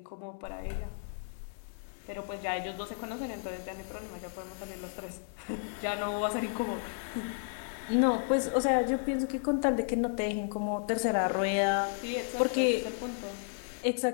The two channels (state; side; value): silent; right; digital silence